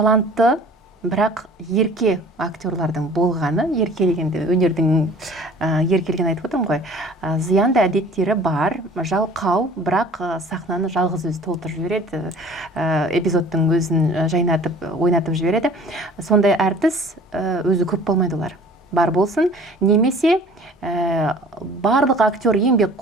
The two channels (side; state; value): both; normal; correlation 0.48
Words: бірақ ерке актерлардың болғаны, еркелегенде өнердің еркелеген айтып отырмын ғой, зиянды әдеттері бар, жалқау, бірақ сахнаны жалғыз өзі толтырып жібереді, эпизодтың өзін жайнатып, ойнатып жібереді. Сондай әртіс өзі көп болмайды олар. Бар болсын, немесе барлық актер